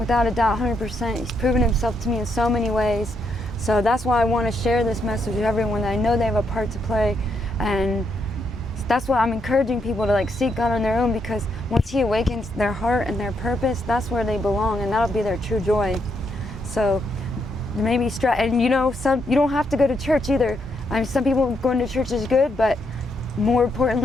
a doubt, 100%. He's proven himself to me in so many ways. So that's why I want to share this message with everyone, that I know they have a part to play. And that's why I'm encouraging people to like seek God on their own, because once he awakens their heart and their purpose, that's where they belong, and that'll be their true joy. So maybe and you know, you don't have to go to church either. I mean, some people going to church is good, but more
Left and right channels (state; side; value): normal; both; correlation 0.78